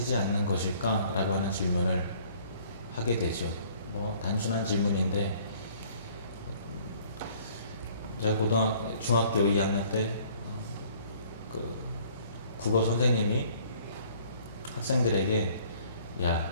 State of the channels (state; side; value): inverted; both; correlation -0.57